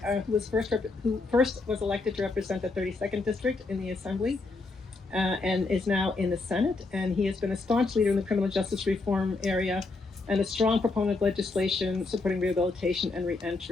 who first was elected to represent the 32nd District in the Assembly and is now in the Senate. And he has been a staunch leader in the criminal justice reform area and a strong proponent of legislation supporting rehabilitation and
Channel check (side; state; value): right; quieter; 3.6 dB